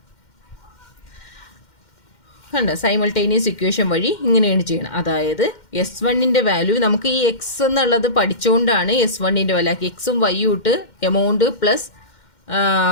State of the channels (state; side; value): late; right; 2.1 ms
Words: കണ്ടോ? സൈമൾട്ടേനിയസ് ഇക്വേഷൻ വഴി ഇങ്ങനെയാണ് ചെയ്യണം. അതായത് S1ൻ്റെ വാല്യൂ നമുക്ക് ഈ എക്സ് എന്നുള്ളത് പഠിച്ചുകൊണ്ടാണ് S1ൻ്റെ വാല്യൂ ആക്കി. എക്സും വൈയും ഇട്ട് amount plus